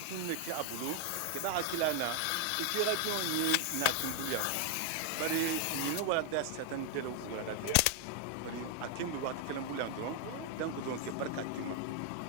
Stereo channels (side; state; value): both; different; correlation 0.00